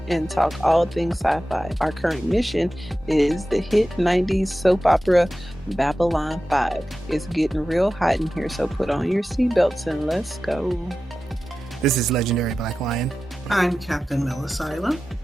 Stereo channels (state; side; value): normal; both; correlation 0.94